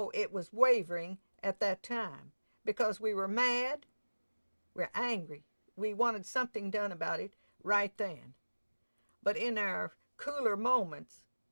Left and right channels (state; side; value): inverted; both; correlation -1.00